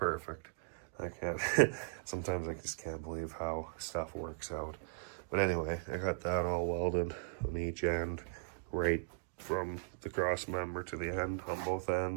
I can't, sometimes I just can't believe how stuff works out. But anyway, I got that all welded on each end, right from the cross member to the end, on both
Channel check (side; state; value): left; silent; digital silence